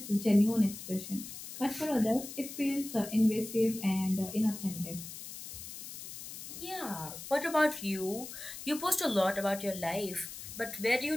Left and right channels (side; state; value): left; noise; hiss, 11 dB below the sound